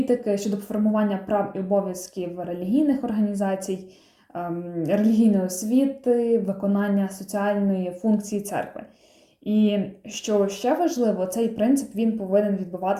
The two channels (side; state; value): both; identical; correlation 1.00